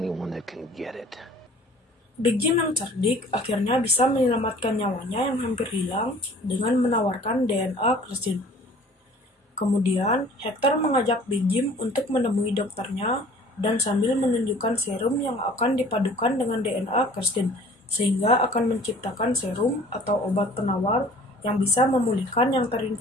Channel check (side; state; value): both; normal; correlation 0.50